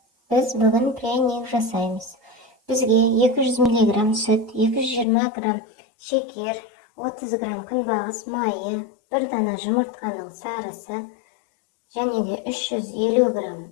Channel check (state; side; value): drops out; right; at 5.1 s